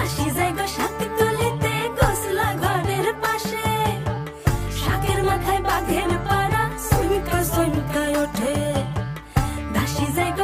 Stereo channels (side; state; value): both; identical; correlation 1.00